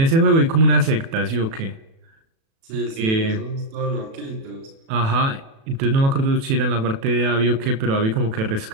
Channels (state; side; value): late; left; 36 ms